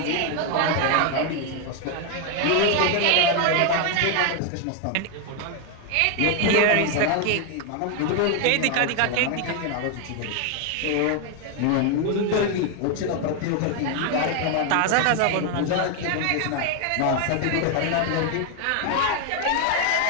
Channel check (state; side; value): different; both; correlation 0.01